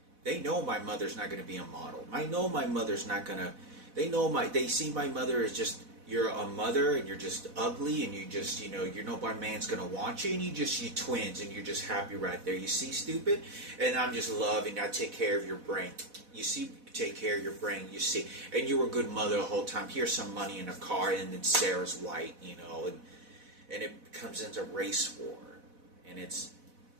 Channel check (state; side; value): late; left; 4.1 ms